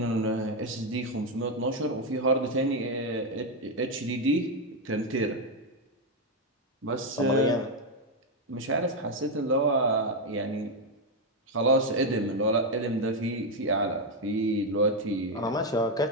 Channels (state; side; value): normal; both; correlation 0.05